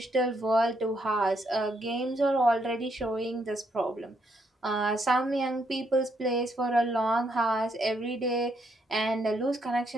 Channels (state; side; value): normal; both; correlation 0.75